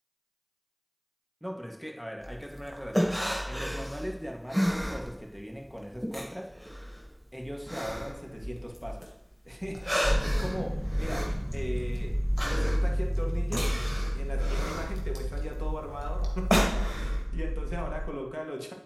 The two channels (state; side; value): identical; both; correlation 1.00